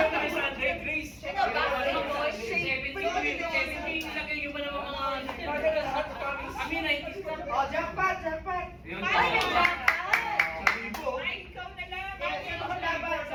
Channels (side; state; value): both; identical; correlation 1.00